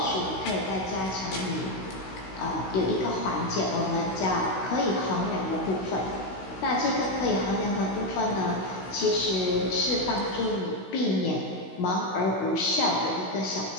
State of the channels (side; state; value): right; late; 16 ms